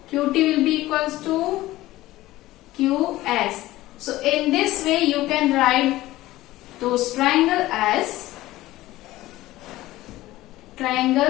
QT will be equals to QS. So in this way you can write those triangle as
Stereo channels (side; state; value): right; quieter; 16.8 dB